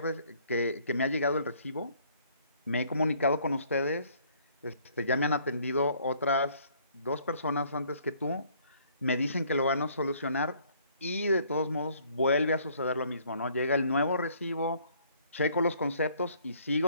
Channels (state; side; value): inverted; both; correlation -0.62